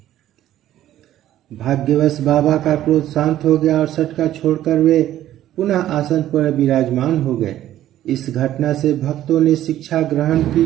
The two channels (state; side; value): quieter; left; 12.7 dB